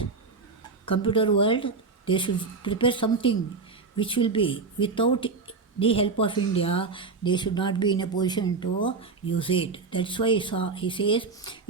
world, they should prepare something which will be, without the help of India, they should not be in a position to use it. That's why he says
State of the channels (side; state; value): left; quieter; 4.4 dB